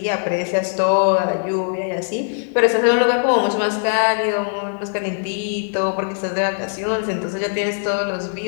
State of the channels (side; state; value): right; silent; digital silence